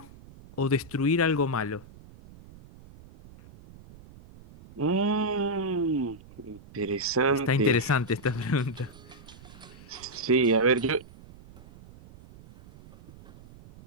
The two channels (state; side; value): noise; right; rumble, 21 dB below the sound